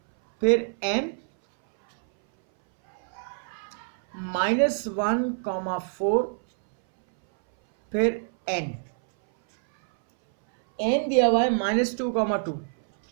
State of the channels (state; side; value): silent; left; 60 dB below the other